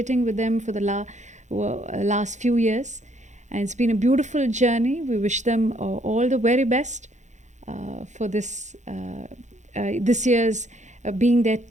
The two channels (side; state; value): left; late; 0.34 ms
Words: with them for the last few years, and it's been a beautiful journey. We wish them all the very best for this year's being their